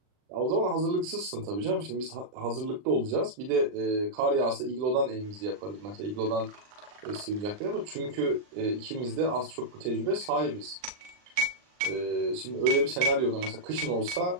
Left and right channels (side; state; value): left; late; 39 ms